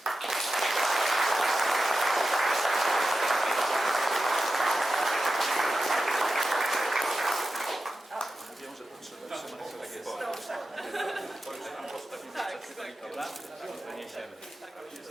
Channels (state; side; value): normal; both; correlation 0.92